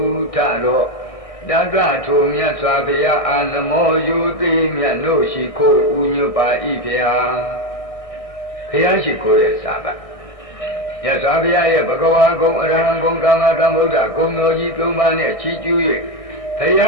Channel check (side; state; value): right; late; 1.6 ms